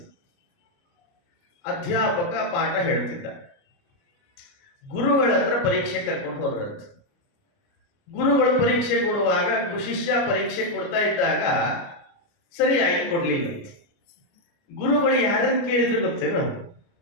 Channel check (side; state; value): right; late; 29 ms